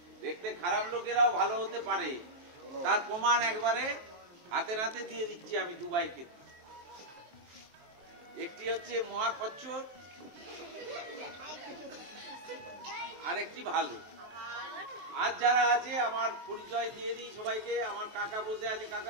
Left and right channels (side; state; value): left; late; 23 ms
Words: দেখতে খারাপ লোকেরাও ভালো হতে পারে, তার প্রমাণ একবারে হাতে হাতে দিয়ে দিচ্ছি আমি। দুবাইকে একটি হচ্ছে মহাখচ্চ, আর একটি ভালো। আজ যারা আছে আমার পরিচয় দিয়ে দিই সবাইকে। আমার কাকা বসে আছে,